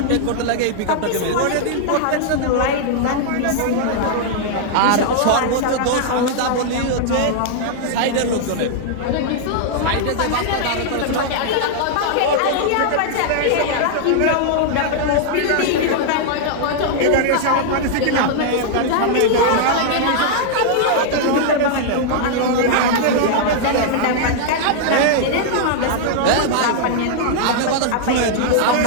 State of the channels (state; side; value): different; both; correlation -0.01